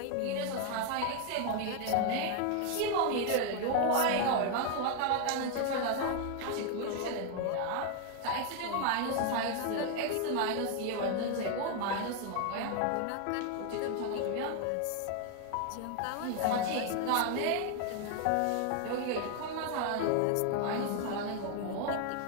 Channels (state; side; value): different; both; correlation 0.01